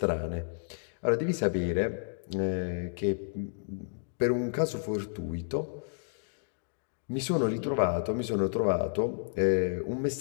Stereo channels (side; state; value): right; silent; digital silence